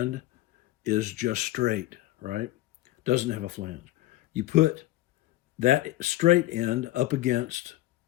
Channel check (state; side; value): quieter; right; 16.2 dB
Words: is just straight, right? Doesn't have a flange. You put that straight end up against,